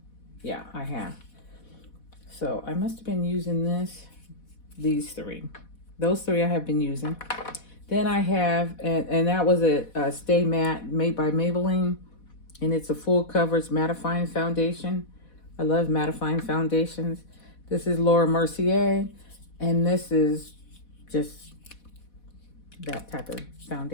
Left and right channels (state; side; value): late; right; 4.1 ms